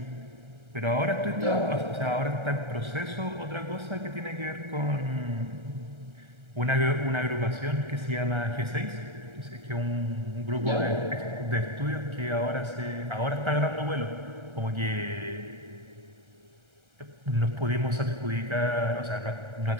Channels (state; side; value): late; left; 1.3 ms